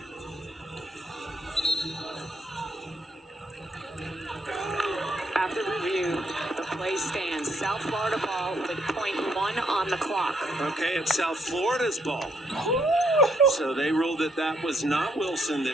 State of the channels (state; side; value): normal; both; correlation 0.72